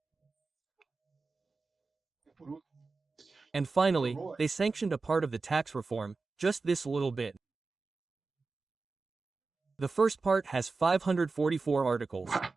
And finally, they sanctioned a part of the tax reform, just this little bit. The first part has 544 articles.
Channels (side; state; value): left; quieter; 4.0 dB